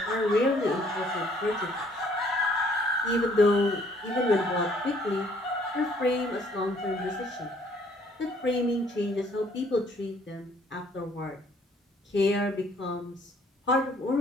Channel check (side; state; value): both; normal; correlation 0.62